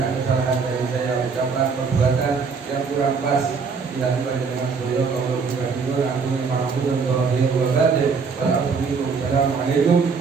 kesalahan dari saya, ucapan, perbuatan yang kurang pas dilakukan dengan beliau. Kalau bukan itu, ampuni maafkan zahir wa batin. Wassalamualaikum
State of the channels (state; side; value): quieter; left; 5.2 dB